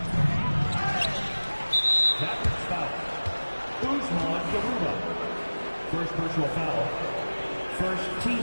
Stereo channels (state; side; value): inverted; both; correlation -1.00